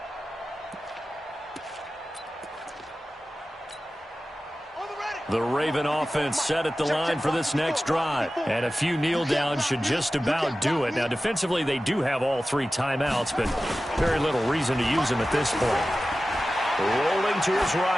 The Raven offense set at the line for this next drive. And a few kneel downs should just about do it. Now, defensively, they do have all 3 timeouts, but very little reason to use them at this point. Rolling to his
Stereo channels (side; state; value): both; normal; correlation 0.95